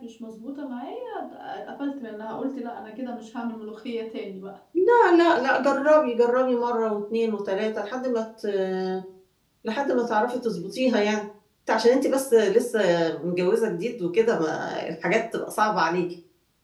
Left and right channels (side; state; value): both; identical; correlation 1.00